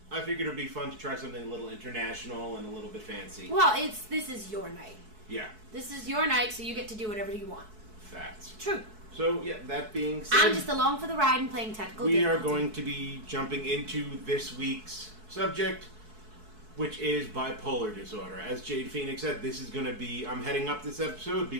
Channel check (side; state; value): left; late; 4.6 ms